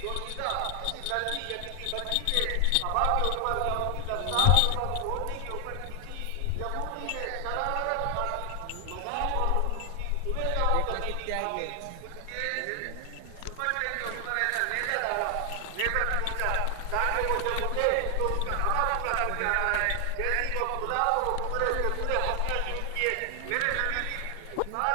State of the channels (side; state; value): both; different; correlation 0.00